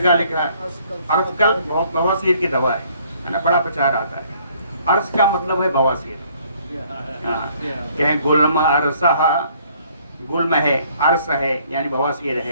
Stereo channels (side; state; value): both; inverted; correlation -0.62